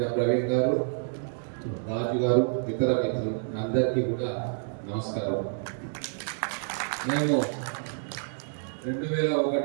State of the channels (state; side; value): silent; left; digital silence